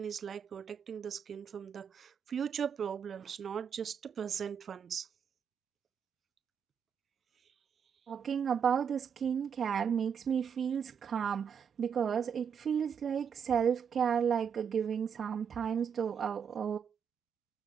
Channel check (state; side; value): quieter; left; 7.3 dB